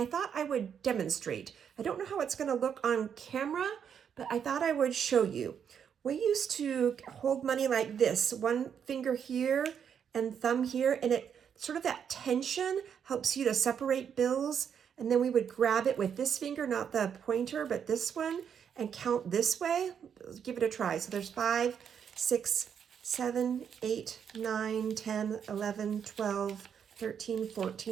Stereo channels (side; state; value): left; quieter; 7.8 dB